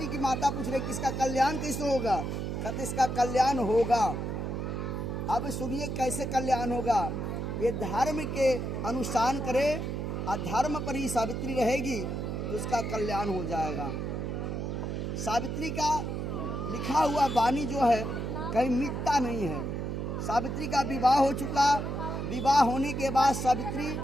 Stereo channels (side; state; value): right; noise; hum, 3 dB below the sound